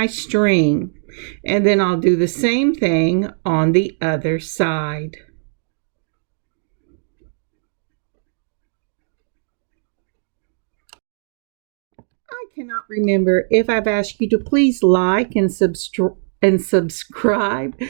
string. And then I'll do the same thing on the other side. I cannot remember if I've asked you to please like and subscribe.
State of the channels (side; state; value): left; silent; digital silence